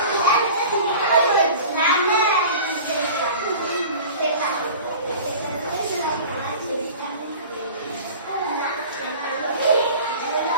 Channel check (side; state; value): both; inverted; correlation -0.40